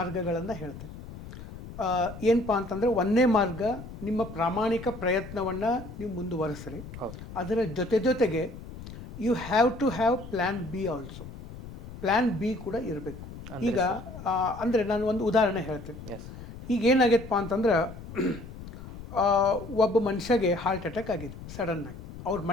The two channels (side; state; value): left; noise; rumble, 13 dB below the sound